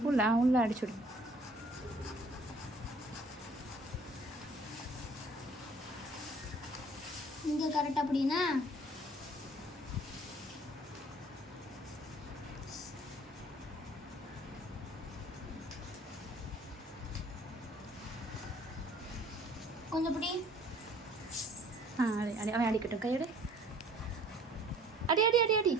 உள்ள அடிச்சுடு. இங்கே கரெக்டாக அப்படின்னா கொஞ்சம் பிடி. அடி அடி அவன் அடிக்கட்டும் கையோட அடி அடி அடி அடி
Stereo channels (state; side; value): normal; both; correlation 0.55